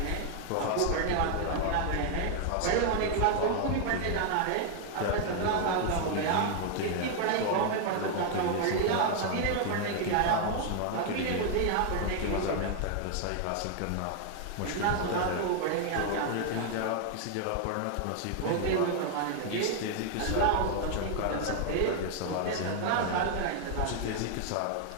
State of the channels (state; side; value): different; both; correlation 0.00